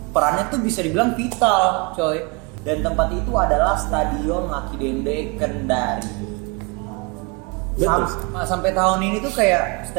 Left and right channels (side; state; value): left; quieter; 29.2 dB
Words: perannya tuh bisa dibilang vital, coy. Dan tempat itu adalah Stadion Lucky Dende Kendari. Sampai tahun ini tuh kayak